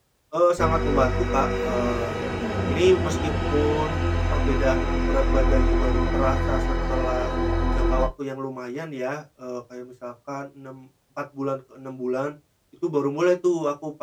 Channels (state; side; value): identical; both; correlation 1.00